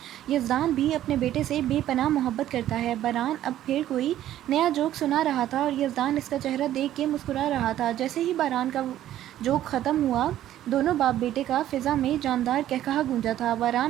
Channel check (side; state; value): left; quieter; 12.6 dB